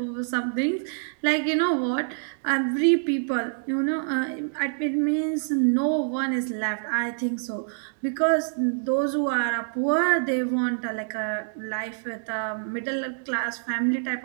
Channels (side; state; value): left; silent; digital silence